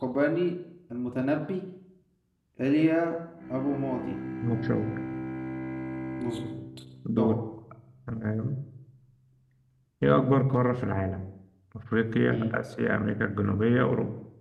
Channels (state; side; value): identical; both; correlation 1.00